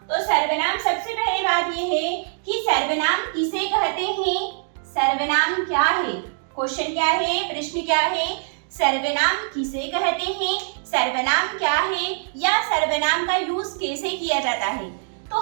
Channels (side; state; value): left; silent; digital silence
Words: तो सर्वनाम, सबसे पहले बात यह है कि सर्वनाम किसे कहते हैं? सर्वनाम क्या है? क्वेश्चन क्या है, प्रश्न क्या है? सर्वनाम किसे कहते हैं, सर्वनाम क्या है, या सर्वनाम का यूज कैसे किया जाता है? तो